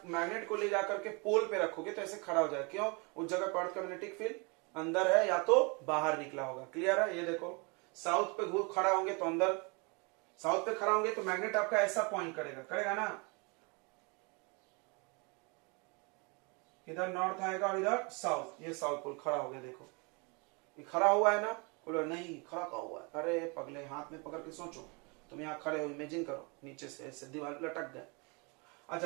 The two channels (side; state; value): left; quieter; 30.9 dB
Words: मैग्नेट को ले जाकर के पोल पे रखोगे तो ऐसे खड़ा हो जाएगा, क्यों? उस जगह पर अर्थ का मैग्नेटिक फील्ड अंदर है या तो बाहर निकला होगा। क्लियर है? ये देखो, साउथ पे खड़ा होंगे तो अंदर, साउथ पे खड़ा होंगे तो मैग्नेट आपका ऐसा पॉइंट करेगा, करेगा ना? इधर नॉर्थ आएगा और इधर साउथ। ये साउथ पोल खड़ा हो गया, देखो ये खड़ा हुआ है ना? बोलो नहीं खड़ा का हुआ है। अरे पगले, हाथ में पकड़ के सोचो, तुम यहाँ खड़े हो, इमेजिन करो नीचे से ऐसे दीवार पे लटक गए।